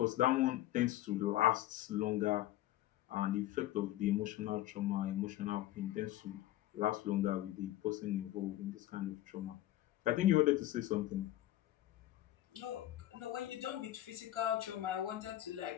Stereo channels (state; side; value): quieter; right; 14.7 dB